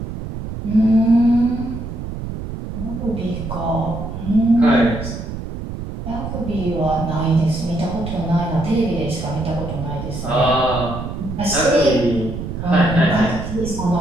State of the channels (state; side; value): noise; right; rumble, 7 dB below the sound